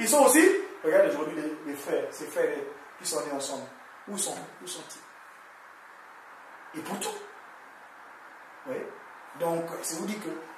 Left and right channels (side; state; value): both; identical; correlation 1.00